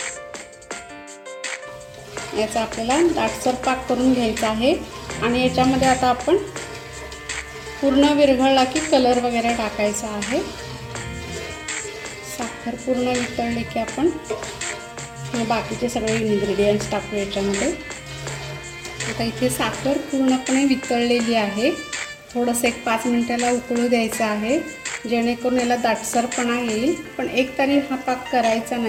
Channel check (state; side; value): identical; both; correlation 1.00